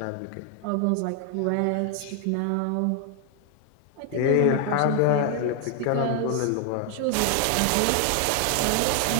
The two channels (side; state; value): both; different; correlation 0.00